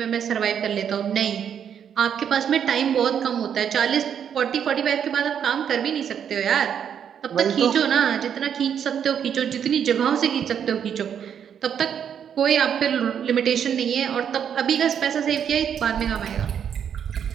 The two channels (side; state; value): left; quieter; 8.4 dB